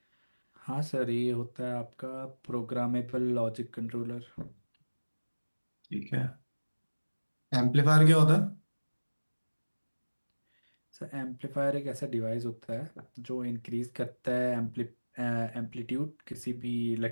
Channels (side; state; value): both; inverted; correlation -1.00